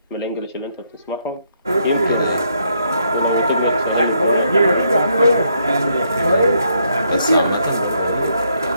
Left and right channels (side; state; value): both; inverted; correlation -0.74